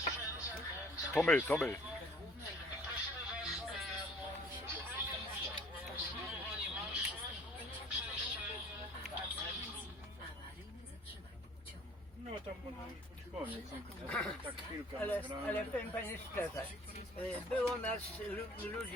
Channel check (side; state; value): both; normal; correlation 0.53